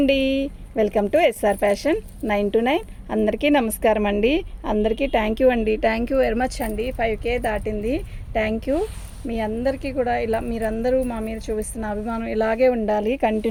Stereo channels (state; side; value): identical; both; correlation 1.00